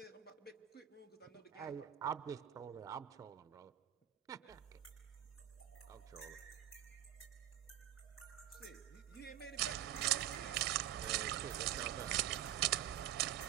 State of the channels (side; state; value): left; quieter; 12.1 dB